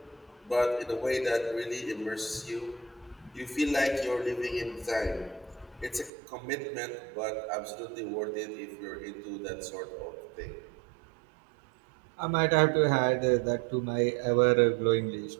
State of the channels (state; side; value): drops out; left; at 6.1 s